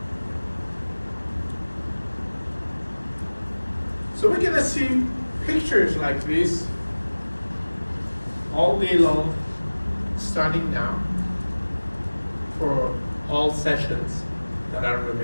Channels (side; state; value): both; inverted; correlation -1.00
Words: So we're gonna see pictures like this all day long, starting now, for all sessions that are